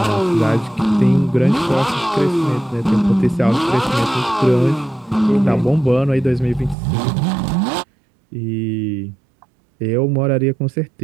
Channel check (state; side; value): drops out; left; at 6.8 s